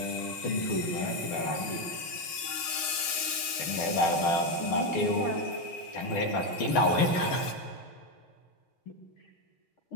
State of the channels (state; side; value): late; right; 6.4 ms